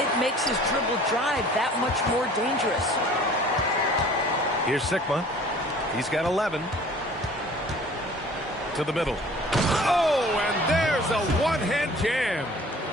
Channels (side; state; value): both; normal; correlation 0.49